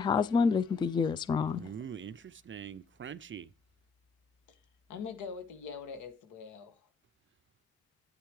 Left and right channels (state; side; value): quieter; right; 4.7 dB